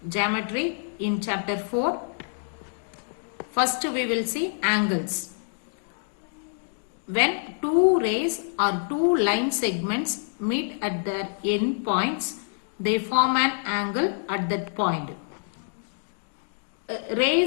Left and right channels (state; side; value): silent; right; digital silence